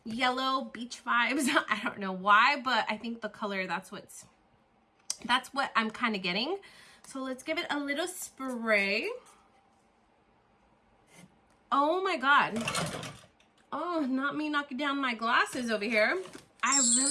Yellow beach vibes. I don't know why, but I think the color, that's what I'm kind of getting. So let's give it a little spray. Oh my god. Oh, not me knocking down my glasses over here. I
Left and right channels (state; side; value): identical; both; correlation 1.00